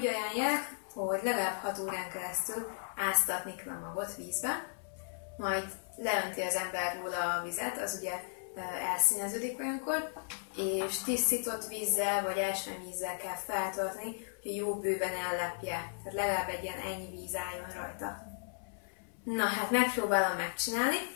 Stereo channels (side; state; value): right; silent; 54 dB below the other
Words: ajánlják, hogy legalább 6 órán keresztül áztatni kell a magot vízbe, majd leönti az ember róla a vizet, az ugye elszíneződik olyankor, és tisztított vízzel vagy ásványvízzel kell feltölteni, hogy jó bőven ellepje. Tehát legalább egy ilyen ennyi víz álljon rajta. Na hát megpróbálom megcsinálni.